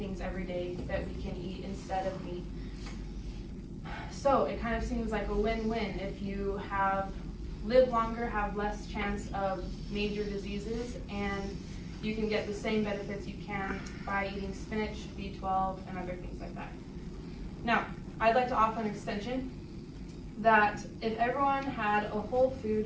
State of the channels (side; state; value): both; identical; correlation 1.00